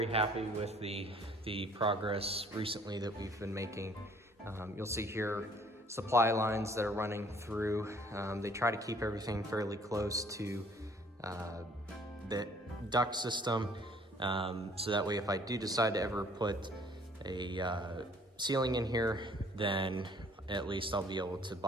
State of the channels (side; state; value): both; normal; correlation 0.58